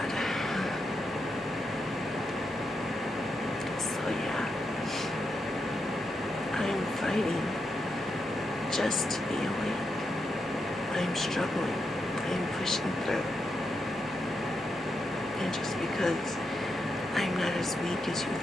So yeah, I'm fighting just to be awake. I'm struggling. I'm pushing through. And just because I'm not as weak as you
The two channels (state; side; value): normal; both; correlation 0.84